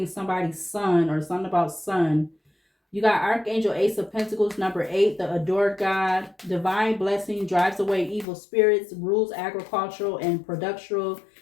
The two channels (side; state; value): right; drops out; at 8.2 s